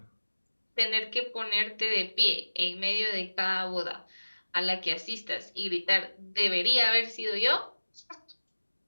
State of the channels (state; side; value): inverted; both; correlation -1.00